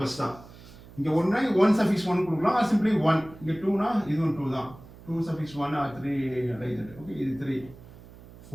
தான். இங்கே 1 சஃபிக்ஸ் 1 கொடுக்கலாம், ஆர் சிம்பிளி 1. இங்கே 2னா இதுவும் 2 தான். 2 சஃபிக்ஸ் 1 ஆர் 3 லைக். ஓகே, இது 3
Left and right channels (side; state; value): right; noise; hum, 20 dB below the sound